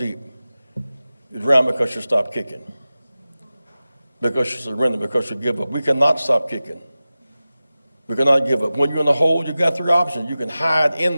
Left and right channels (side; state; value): both; inverted; correlation -0.96